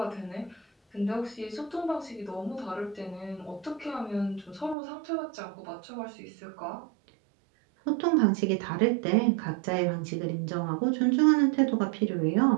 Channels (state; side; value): drops out; left; at 4.8 s